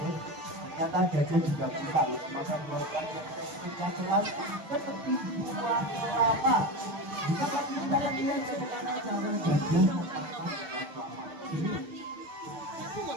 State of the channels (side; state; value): left; late; 6.8 ms